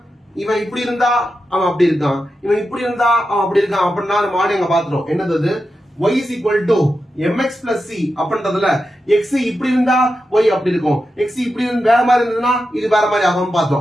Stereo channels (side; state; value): both; normal; correlation 0.89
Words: இவன் இப்படி இருந்தா அவன் அப்படி இருக்கான், இவன் இப்படி இருந்தா அவன் அப்படி இருக்கான் அப்படின்னா நம்ம ஆடி அங்க பாத்துட்டோம். என்னது y is equal to mx plus c அப்படின்றதுல x இப்படி இருந்தா y அப்படி இருக்கும், x இப்படி வேற மாதிரி இருந்ததுன்னா இது வேற மாதிரி ஆகும்